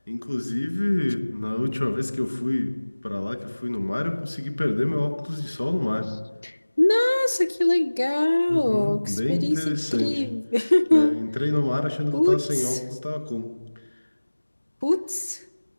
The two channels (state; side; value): inverted; both; correlation -1.00